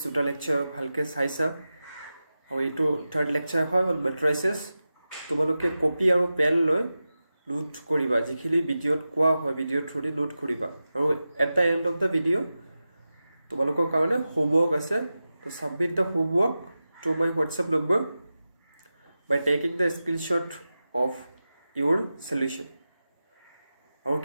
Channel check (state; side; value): inverted; both; correlation -0.93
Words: দুটা lecture ভালকে চাইছা আৰু এইটো third lecture হয় on matrices তোমালোকে কপি আৰু পেন লৈ নোট কৰিবা যিখিনি ভিডিঅত কোৱা হয় ভিডিঅ থ্ৰুদি নোট কৰিবা আৰু at the end of the video তোমালোকৰ কাৰণে homework আছে to submit the homework to my WhatsApp number by taking the screenshot of your solution আৰু